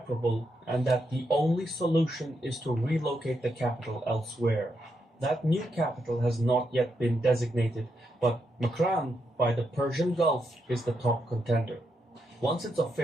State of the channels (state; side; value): normal; both; correlation 0.82